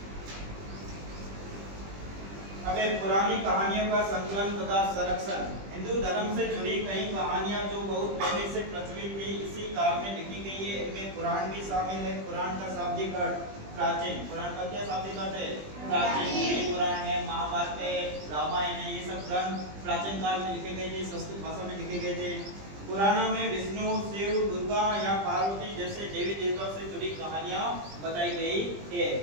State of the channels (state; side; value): late; left; 20 ms